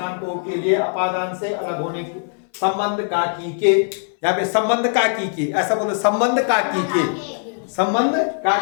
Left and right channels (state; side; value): silent; right; 60 dB below the other